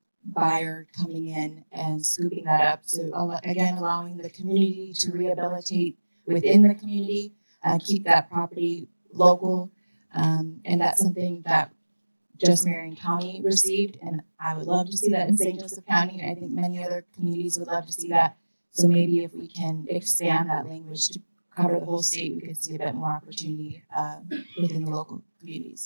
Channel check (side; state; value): both; inverted; correlation -1.00